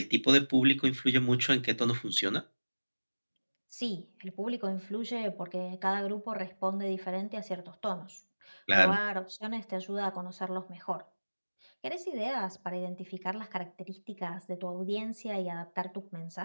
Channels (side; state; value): both; inverted; correlation -1.00